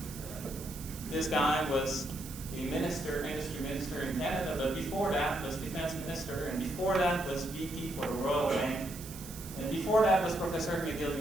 this guy was a industry minister in Canada, but before that was defense minister, and before that was VP for the Royal Bank, and before that was professor at McGill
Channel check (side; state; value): right; noise; hiss, 14 dB below the sound